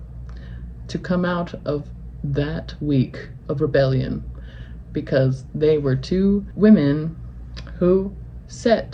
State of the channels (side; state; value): both; identical; correlation 1.00